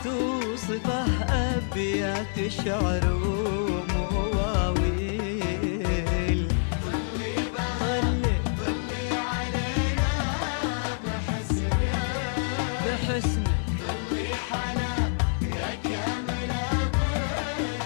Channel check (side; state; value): right; silent; digital silence